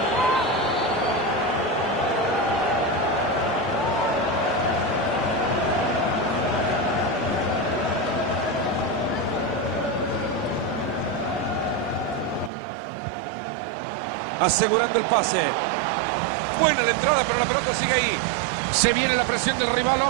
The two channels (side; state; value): left; drops out; at 12.5 s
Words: asegurando el pase. Buena la entrada, pero la pelota sigue ahí. Se viene la presión del rival,